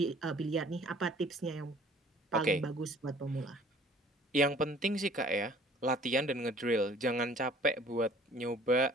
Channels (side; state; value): both; normal; correlation 0.53